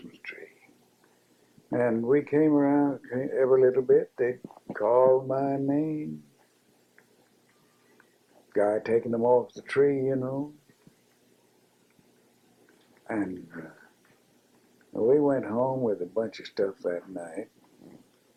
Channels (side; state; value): both; identical; correlation 1.00